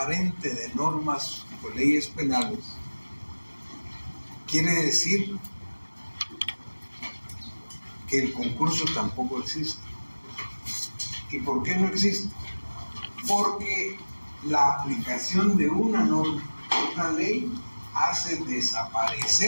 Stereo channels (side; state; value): both; inverted; correlation -1.00